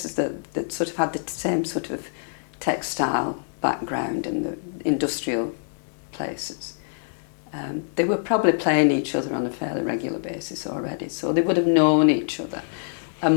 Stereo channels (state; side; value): silent; right; 62 dB below the other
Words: that sort of had the same sort of textile background and the industrial places, they were probably playing each other on a fairly regular basis already, so they would have known each other.